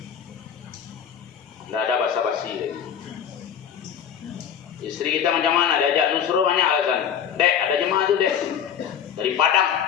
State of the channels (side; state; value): right; quieter; 8.5 dB